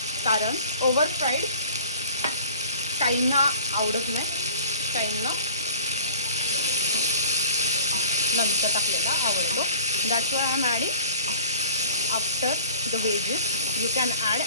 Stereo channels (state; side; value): inverted; both; correlation -0.45